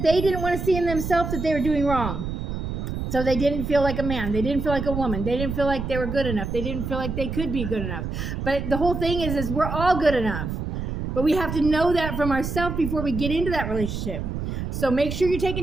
they didn't want to see in themselves that they were doing wrong. So they didn't feel like a man. They didn't feel like a woman. They didn't feel like they were good enough. They didn't feel like they could be good enough. But the whole thing is we're all good enough. But we have to know that from ourselves before we get into that relationship. So make sure you're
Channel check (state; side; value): noise; right; rumble, 4 dB below the sound